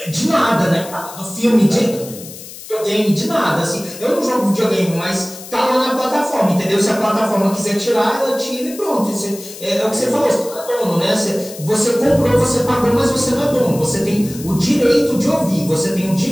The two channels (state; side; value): noise; left; hiss, 15 dB below the sound